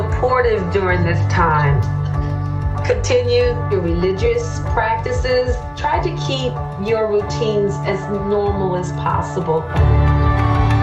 during this time. Continue your religious practices. Try to keep your routines as normal as possible.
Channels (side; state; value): both; identical; correlation 1.00